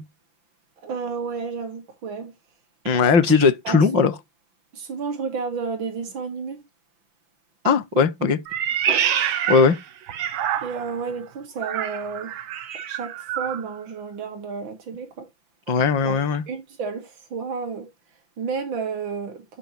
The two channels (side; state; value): left; late; 5.9 ms